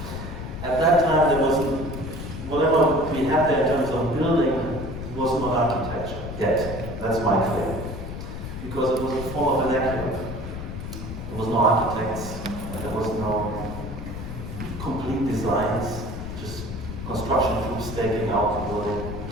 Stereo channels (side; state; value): left; noise; rumble, 8 dB below the sound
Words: At that time, there wasn't, whatever we had there in terms of building was not architecture yet. That's my claim. Because it was a form of vernacular. There was no architects, there was no complete designs, just construction crews staking out the building.